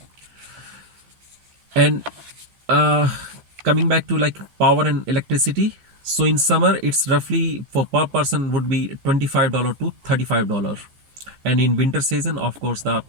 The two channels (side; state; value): left; late; 15 ms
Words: And uh, coming back to like power and electricity, so in summer it's roughly for per person would be $25 to $35. And in winter season, of course, the